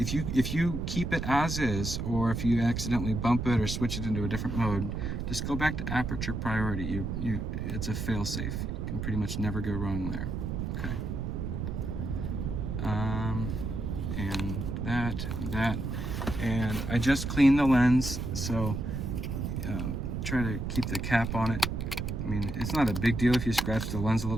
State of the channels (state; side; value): noise; right; rumble, 3 dB below the sound